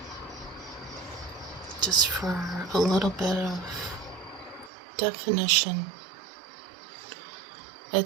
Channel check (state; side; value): drops out; left; at 4.7 s